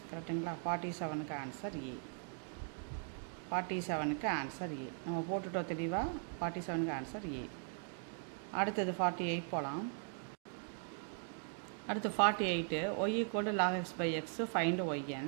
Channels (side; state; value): left; silent; 51 dB below the other